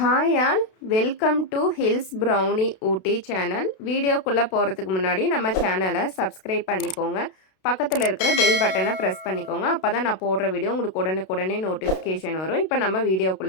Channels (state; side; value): late; right; 32 ms